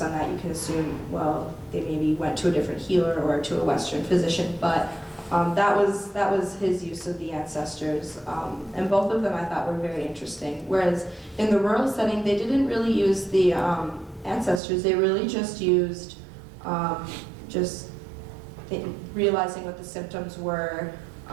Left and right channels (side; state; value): left; drops out; at 14.6 s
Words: that, you can assume, well, they maybe went to a different healer or to a Western physician, but that was his use of the ancestors. And both of them I thought were very interesting. Whereas in the rural setting, they didn't really use the ancestors, they really just used realizing what the symptoms were